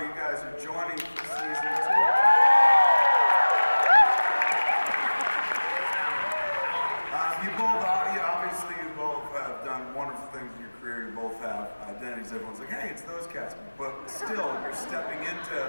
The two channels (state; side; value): inverted; both; correlation -1.00